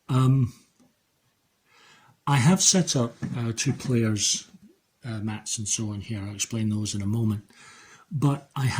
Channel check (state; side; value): identical; both; correlation 1.00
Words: I have set up 2 players, mats and so on here. I'll explain those in a moment. But I